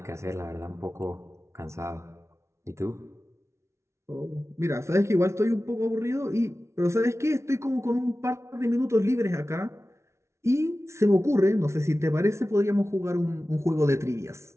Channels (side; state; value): left; late; 0.13 ms